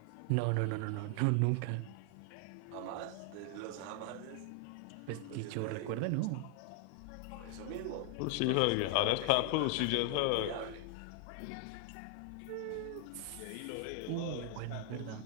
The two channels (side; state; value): both; different; correlation 0.00